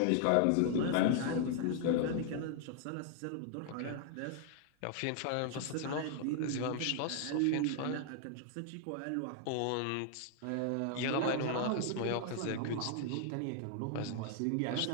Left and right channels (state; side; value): different; both; correlation 0.00